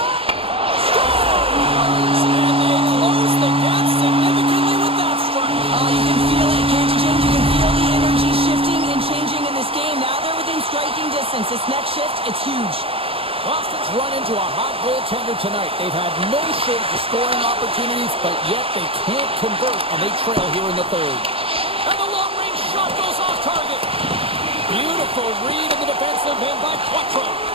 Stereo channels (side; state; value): left; late; 0.27 ms